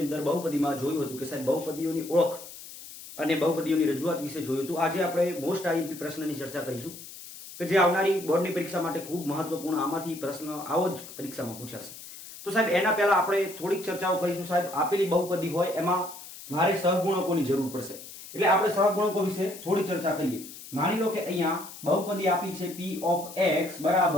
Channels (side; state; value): left; noise; hiss, 15 dB below the sound